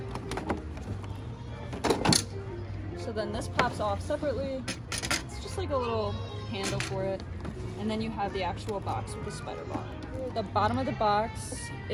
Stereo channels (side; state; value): both; identical; correlation 1.00